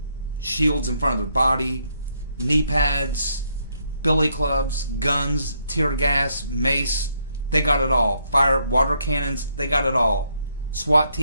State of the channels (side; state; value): both; inverted; correlation -0.74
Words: in front of their body, knee pads, billy clubs, guns, tear gas, mace. They got it all. Fire, water cannons, they got it all. SWAT